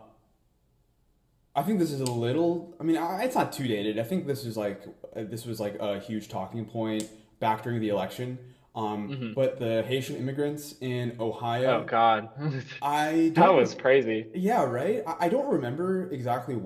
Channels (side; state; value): both; identical; correlation 1.00